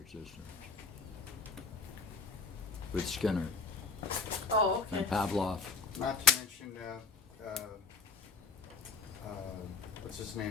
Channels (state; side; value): quieter; right; 4.2 dB